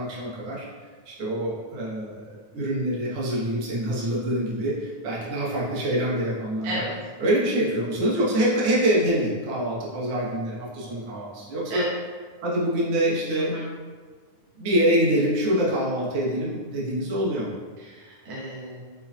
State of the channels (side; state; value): left; late; 9.5 ms